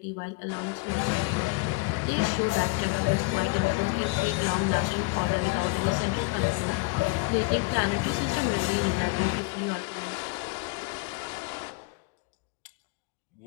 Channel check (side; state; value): right; quieter; 25.8 dB